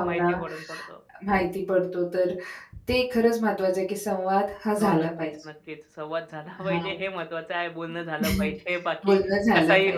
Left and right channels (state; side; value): identical; both; correlation 1.00